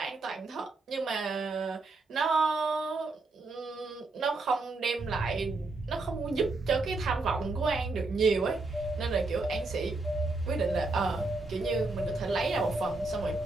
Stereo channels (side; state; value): left; quieter; 3.3 dB